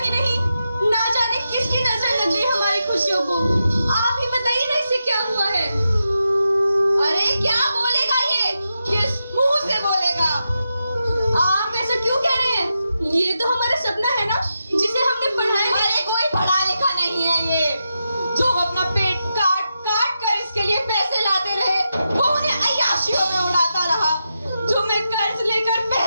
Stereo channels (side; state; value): both; inverted; correlation -0.87